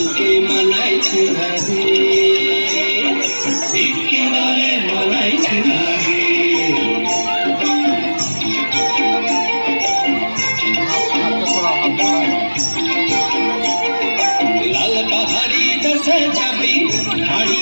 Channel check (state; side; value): inverted; both; correlation -1.00